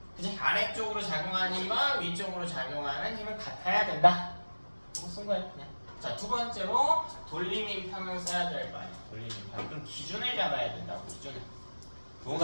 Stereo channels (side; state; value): both; inverted; correlation -1.00